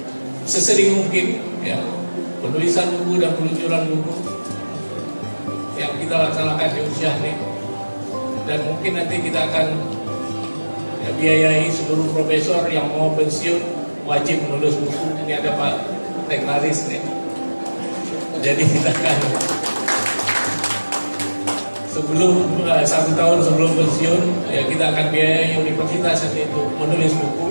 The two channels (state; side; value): inverted; both; correlation -1.00